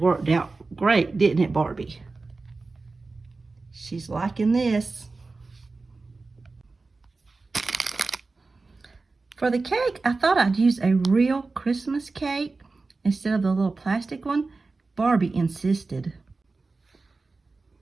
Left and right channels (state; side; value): quieter; left; 3.7 dB